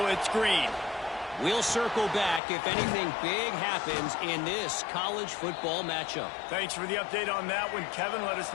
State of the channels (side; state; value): right; drops out; at 2.4 s